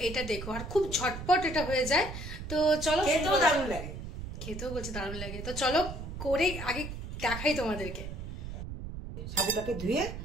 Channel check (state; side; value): noise; right; rumble, 8 dB below the sound